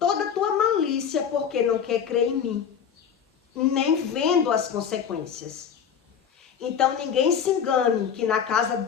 a tua malícia, porque não quer crer em mim, nem vendo as consequências. Então ninguém se engane que na casa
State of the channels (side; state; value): right; quieter; 7.7 dB